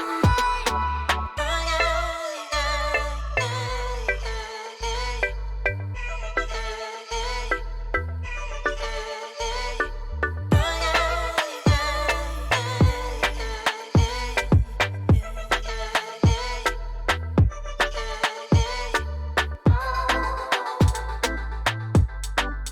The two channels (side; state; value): both; identical; correlation 1.00